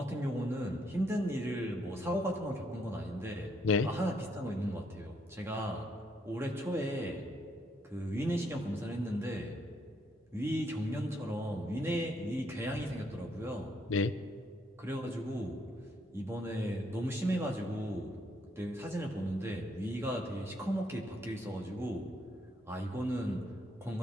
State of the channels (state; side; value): normal; both; correlation 0.73